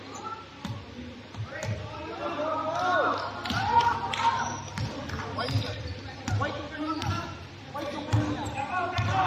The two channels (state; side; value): identical; both; correlation 1.00